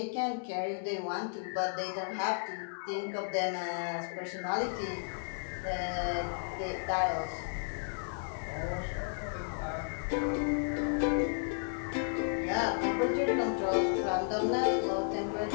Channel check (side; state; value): right; silent; 55 dB below the other